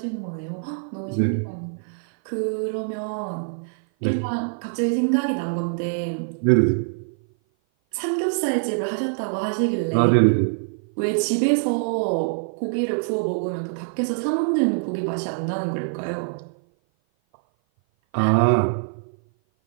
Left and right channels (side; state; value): left; silent; 56 dB below the other